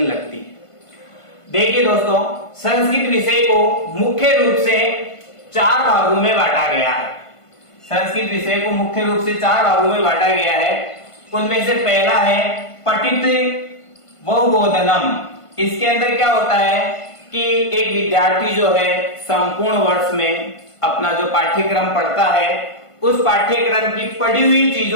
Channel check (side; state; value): right; late; 1.5 ms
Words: लगती है। देखिए दोस्तों, संस्कृत विषय को मुख्य रूप से 4 भागों में बांटा गया है। संस्कृत विषय को मुख्य रूप से 4 भागों में बांटा गया है। उनमें से पहला है पठित व बोधनम। इसके अंदर क्या होता है कि एक विद्यार्थी जो है संपूर्ण वर्ष में अपना जो पाठ्यक्रम पढ़ता है, उस पाठ्यक्रम की पढ़ी हुई